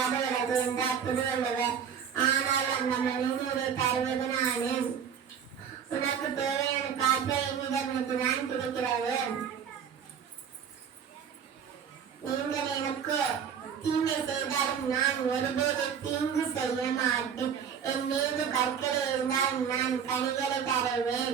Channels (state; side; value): quieter; left; 7.7 dB